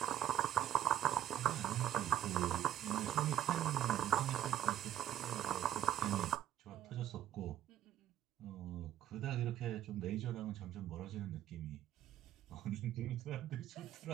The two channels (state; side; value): quieter; left; 11.5 dB